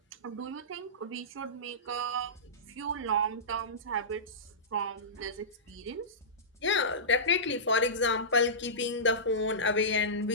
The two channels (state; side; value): normal; both; correlation -0.18